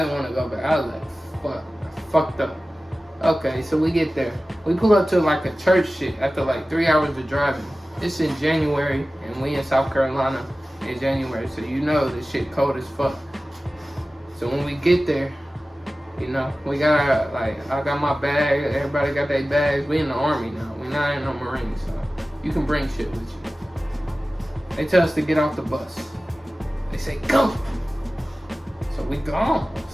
want to go back. I was like, fuck, I fucked up. Okay, so we get there. We pull up to like a church shit after like 3 hours of driving. It's in January, and we in South Carolina in January, so you know this shit cold as fuck. So when we get there, you know, we got like, I got my bag, everybody got their bags. We in the Army now. We not in no Marines, so you can bring shit with you. They tell us to get off the bus. They say, go! So we gone.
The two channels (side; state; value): both; normal; correlation 0.96